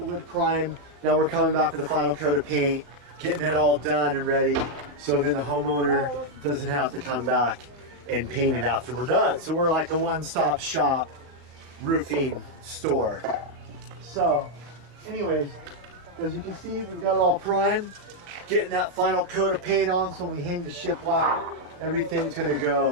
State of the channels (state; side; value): late; left; 34 ms